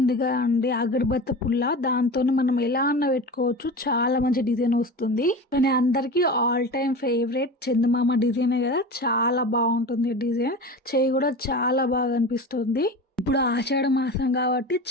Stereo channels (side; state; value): both; normal; correlation 0.31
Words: కదా అండి, అగరబత్తి పుల్ల, దాంతో మనం ఎలా అన్న పెట్టుకోవచ్చు. చాలా మంచి డిజైన్ వస్తుంది. కానీ అందరికీ ఆల్ టైమ్ ఫేవరెట్ చందమామ డిజైనే కదా, చాలా బాగుంటుంది డిజైన్. చేయి కూడా చాలా బాగా అనిపిస్తుంది. ఇప్పుడు ఆషాఢ మాసం కాబట్టి